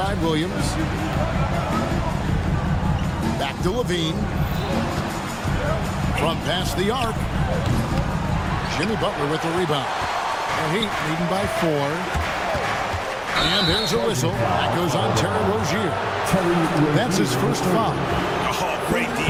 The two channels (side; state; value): both; identical; correlation 1.00